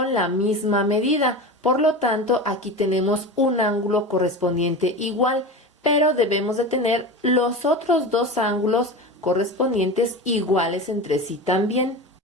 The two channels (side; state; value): both; normal; correlation 0.28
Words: la misma medida. Por lo tanto, aquí tenemos un ángulo correspondiente igual, pero debemos de tener los otros dos ángulos correspondientes iguales entre sí también.